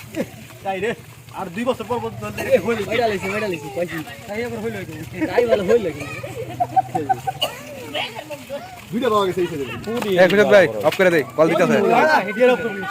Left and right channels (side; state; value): both; identical; correlation 1.00